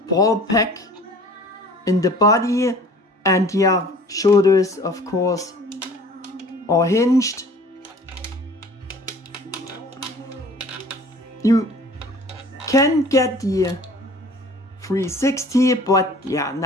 ball pack in the body, and yeah, shoulders of course are hinged. You can get the 360, but yeah,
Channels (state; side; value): normal; both; correlation 0.48